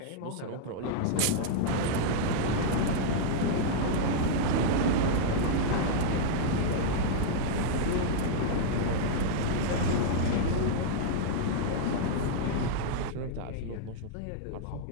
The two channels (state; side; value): different; both; correlation -0.01